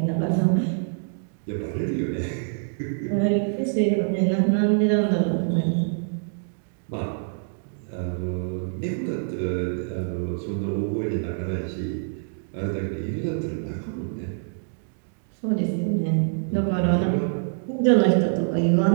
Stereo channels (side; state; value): left; silent; digital silence